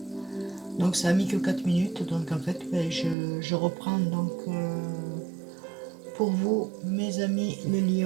Donc ça a mis que 4 minutes, donc en fait je reprends donc pour vous mes amis les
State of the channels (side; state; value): left; drops out; at 3.2 s